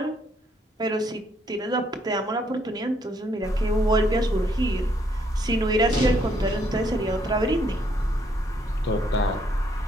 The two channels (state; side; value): normal; both; correlation 0.70